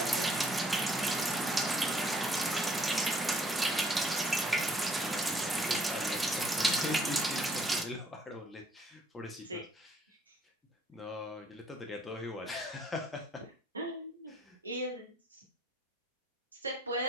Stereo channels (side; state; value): both; normal; correlation 0.64